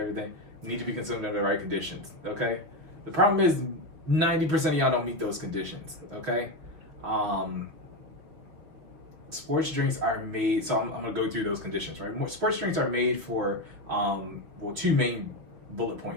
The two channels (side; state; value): left; late; 6.3 ms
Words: Need to be consumed under the right conditions, okay? The problem is 90% of y'all don't meet those conditions, okay? Sports drinks are made, so I'm going to go through those conditions, right? Sports drinks are made for, two main bullet